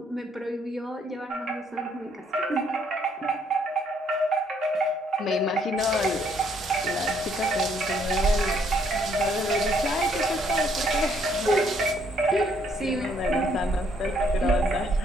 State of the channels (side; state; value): both; normal; correlation 0.68